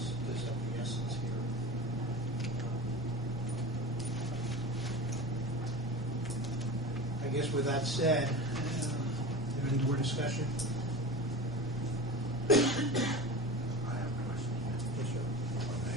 of the essence here. I guess with that said, is there any more discussion? I have a question. Yes, sir.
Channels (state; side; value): normal; both; correlation 0.31